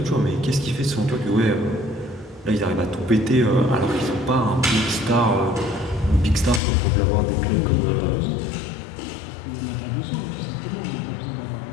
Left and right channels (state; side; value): drops out; right; at 6.6 s